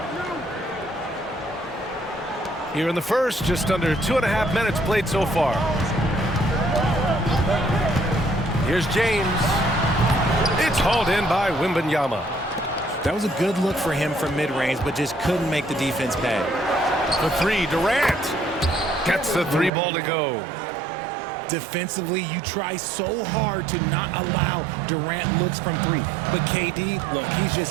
Here in the first, just under 2.5 minutes played so far. Here's James. It's hauled in by Wembanyama. That was a good look for him from mid-range, but just couldn't make the defense pay. For three, Durant gets the three ball to go. Defensively, you try so hard to not allow Durant looks from three. But KD, look, he's just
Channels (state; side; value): drops out; left; at 19.7 s